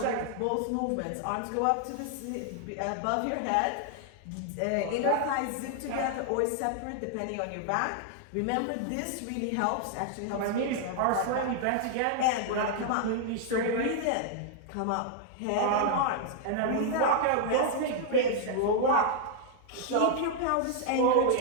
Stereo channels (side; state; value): both; different; correlation -0.01